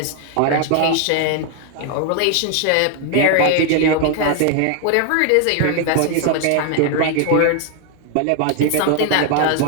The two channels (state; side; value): different; both; correlation 0.00